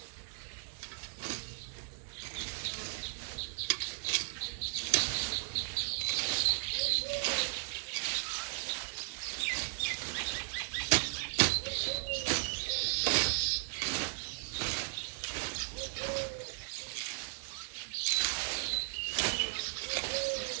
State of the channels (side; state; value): left; silent; digital silence